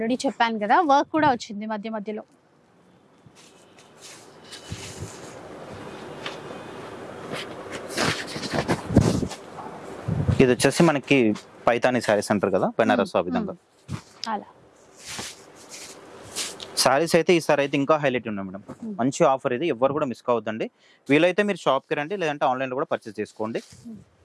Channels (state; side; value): identical; both; correlation 1.00